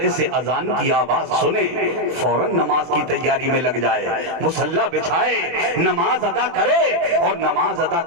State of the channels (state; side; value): late; left; 23 ms